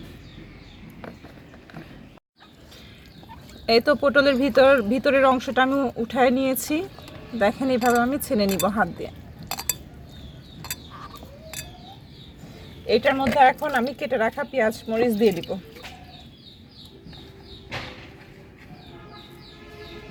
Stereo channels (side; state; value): both; identical; correlation 1.00